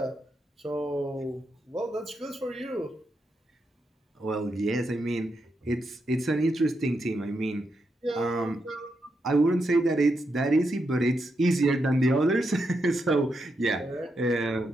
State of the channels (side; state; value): both; normal; correlation 0.83